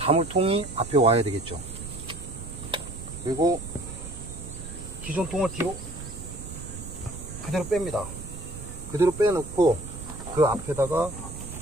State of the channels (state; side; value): noise; right; rumble, 11 dB below the sound